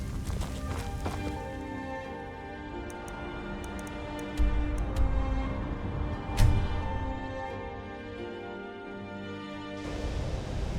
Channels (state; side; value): identical; both; correlation 1.00